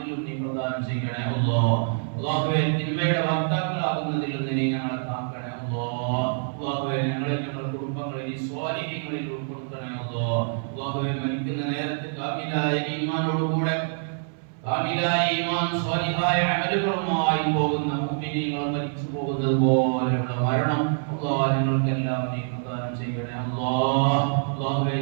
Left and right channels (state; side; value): silent; left; 61 dB below the other